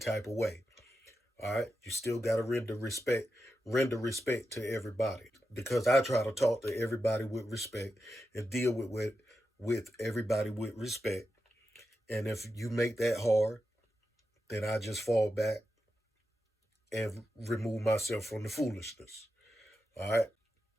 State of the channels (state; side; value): normal; both; correlation 0.89